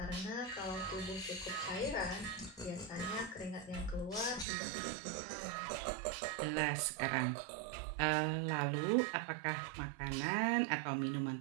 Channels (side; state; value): left; drops out; at 4.5 s